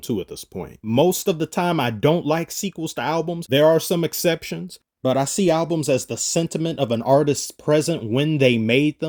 at this point. Most of the time, I don't like sequels to albums. There are some exceptions, but I see albums as the sentiment of an artist's present when they made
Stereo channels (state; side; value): identical; both; correlation 1.00